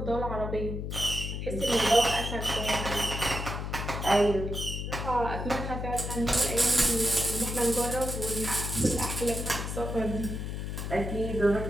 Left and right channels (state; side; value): noise; left; hum, 4 dB below the sound